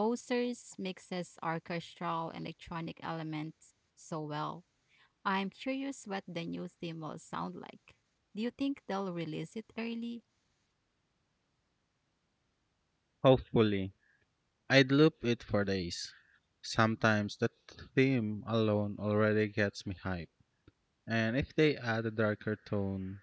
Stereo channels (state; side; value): identical; both; correlation 1.00